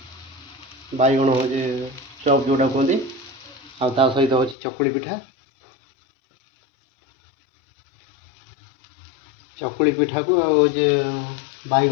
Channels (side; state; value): right; drops out; at 4.5 s